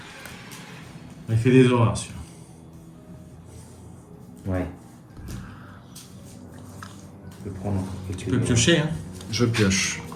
Il fait des horreurs, celui-là. Ouais. Je peux prendre quelques Tu peux piocher, hein. Je pioche.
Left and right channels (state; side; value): identical; both; correlation 1.00